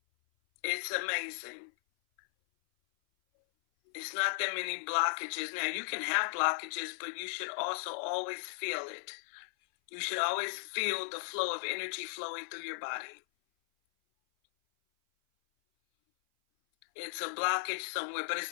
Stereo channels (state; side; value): silent; right; 54 dB below the other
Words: It's amazing. It's not that many blockages. Now, you can have blockages, but you should also always feel it. You should always feel the flow of energy flowing through your body. It's a blockage somewhere, but